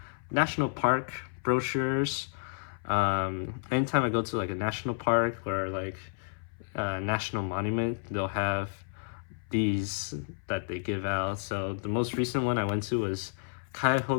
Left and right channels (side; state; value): right; silent; 57 dB below the other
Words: national park brochures. Anytime I go to like a national park or like a national monument, they'll have these that they give out. So the most recent one I went to was